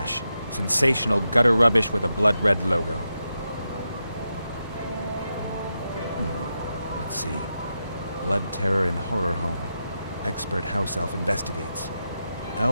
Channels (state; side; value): inverted; both; correlation -0.87